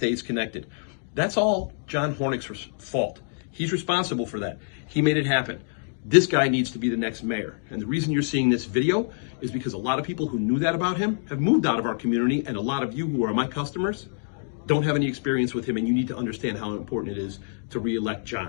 connected. That's all John Hornik's fault. He's responsible for that. He made it happen. This guy needs to be the next mayor. And the reason you're seeing this video is because a lot of people who knew that about him have moved out of our community, and a lot of you who are my customers don't have any experience with him, and you need to understand how important it is to re-elect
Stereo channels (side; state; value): right; silent; digital silence